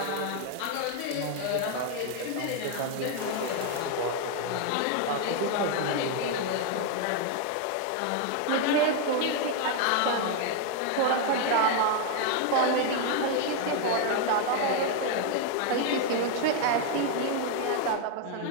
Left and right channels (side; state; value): both; different; correlation 0.01